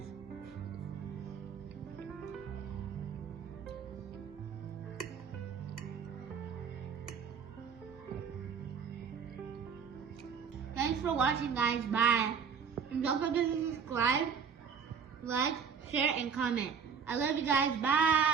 Thanks for watching, guys. Bye. And don't forget to subscribe, like, share, and comment. I love you guys.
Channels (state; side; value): quieter; left; 6.4 dB